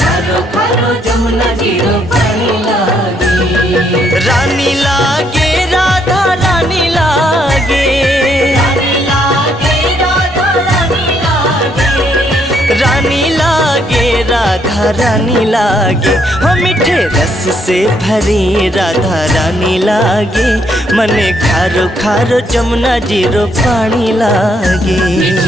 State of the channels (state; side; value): normal; both; correlation 0.72